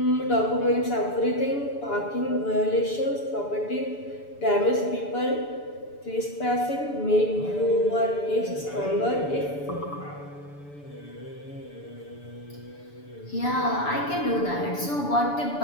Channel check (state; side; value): late; right; 6.9 ms